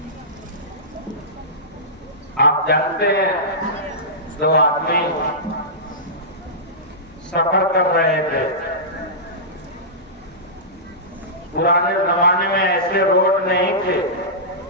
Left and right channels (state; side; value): normal; both; correlation -0.17